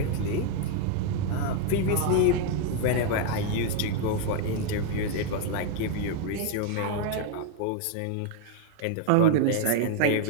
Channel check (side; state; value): both; different; correlation 0.00